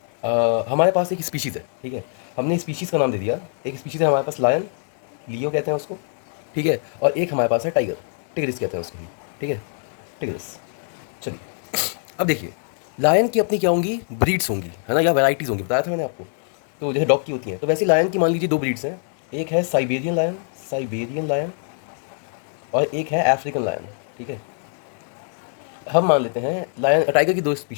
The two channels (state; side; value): silent; right; digital silence